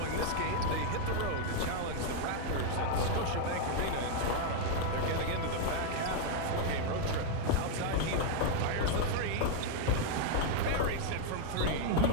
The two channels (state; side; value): different; both; correlation 0.00